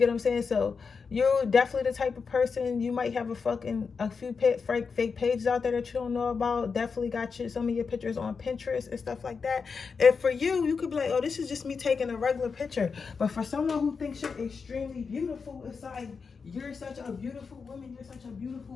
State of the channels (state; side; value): quieter; right; 5.3 dB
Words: what I'm saying? So you're definitely the type of person, you might have a few fake pages out there that you don't know about. Definitely got some of your pictures on Pinterest and stuff like that. And for you, you could be like, oh, this is just me taking a regular picture. But for someone who thinks you're extremely beautiful, it's like, you're such a beautiful woman, you're such a